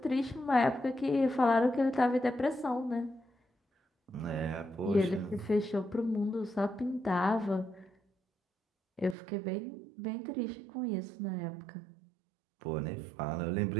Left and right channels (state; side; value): drops out; left; at 9.2 s